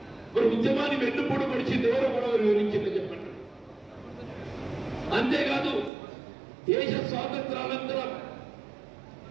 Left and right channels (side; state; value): left; drops out; at 5.9 s